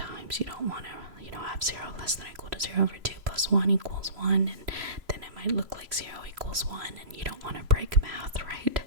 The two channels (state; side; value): late; left; 3.0 ms